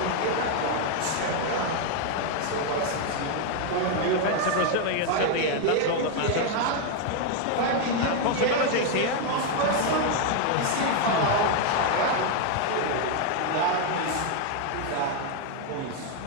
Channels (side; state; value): both; different; correlation 0.01